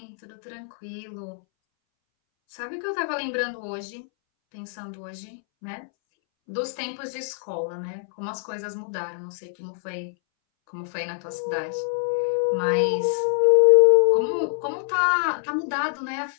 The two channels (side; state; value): right; silent; 62 dB below the other